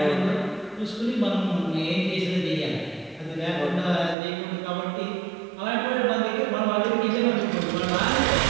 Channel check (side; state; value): left; drops out; at 4.2 s